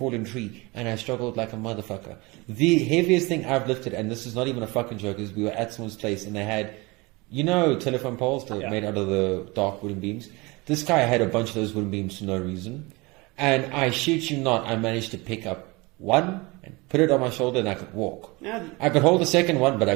tree and I struggled like a motherfucker. The heaviest thing I've lifted, and this is not even a fucking joke, is we were at someone's place and they had, telephone poles that made out of the dark wooden beams. This guy had a bunch of those wooden beams for no reason. And I shit you not, I managed to pick up one and put it on my shoulder and I could walk. Yeah. I could hold the second one, but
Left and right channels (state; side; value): quieter; left; 24.8 dB